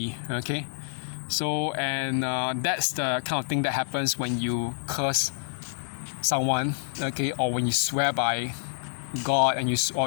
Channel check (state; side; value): silent; right; digital silence